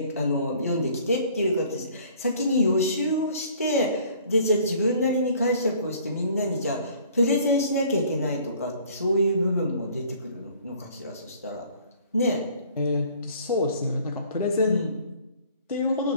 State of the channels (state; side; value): inverted; both; correlation -0.54